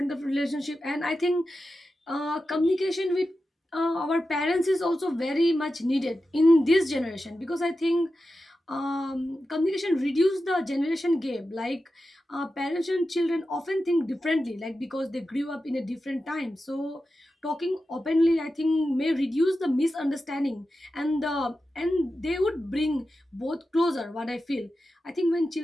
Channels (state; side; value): normal; both; correlation 0.91